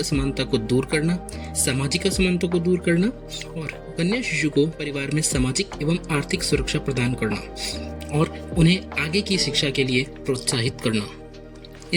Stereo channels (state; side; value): identical; both; correlation 1.00